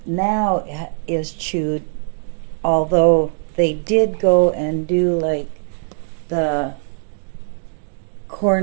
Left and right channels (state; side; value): silent; left; digital silence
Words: is chewed, although they did go and do like the